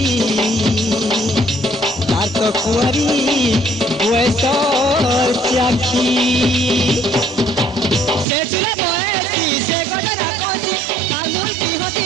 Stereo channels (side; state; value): left; drops out; at 8.2 s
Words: तार तो कुआरी बयसर चाखी से चुला बयसी से गडरा कसी तालुर की हसी